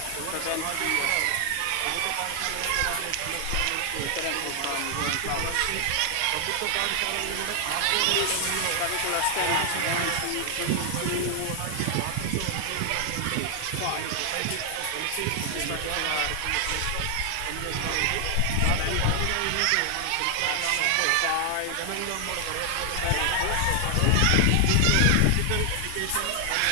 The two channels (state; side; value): different; both; correlation 0.00